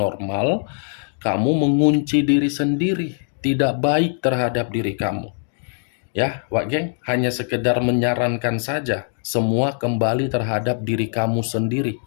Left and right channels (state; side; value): silent; right; digital silence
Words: kamu mengunci diri sendiri, tidak baik terhadap diri kamu. Ya, Wak Geng, hanya sekedar menyarankan saja, semua kembali terhadap diri kamu sendiri.